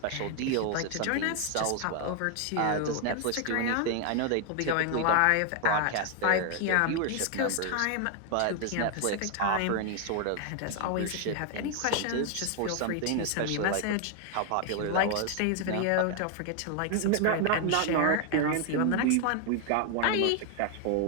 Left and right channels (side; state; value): both; different; correlation 0.00